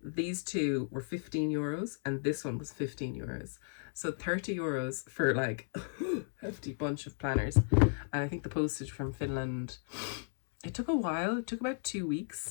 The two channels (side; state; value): right; silent; 55 dB below the other